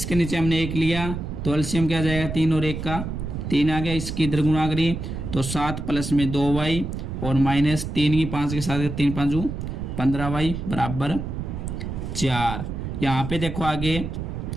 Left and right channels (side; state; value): right; noise; rumble, 5 dB below the sound